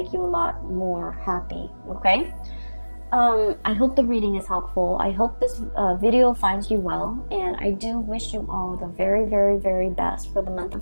you a lot more happy, okay? I hope the reading is helpful. I hope this video finds you well, and I do wish you all the very, very, very best for the month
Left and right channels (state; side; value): inverted; both; correlation -1.00